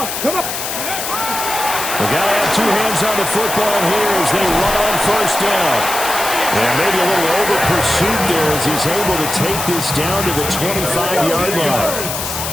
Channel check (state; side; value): noise; left; hiss, 5 dB below the sound